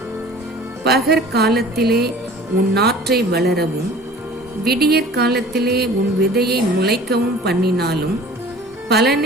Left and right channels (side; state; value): both; normal; correlation 0.46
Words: பகற்காலத்திலே உன் நாற்றை வளரவும் விடியற் காலத்திலே உன் விதையை முளைக்கவும் பண்ணினாலும்